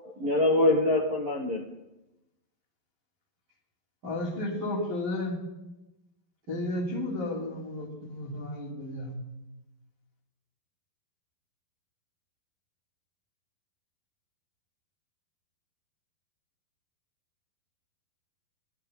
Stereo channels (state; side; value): late; left; 11 ms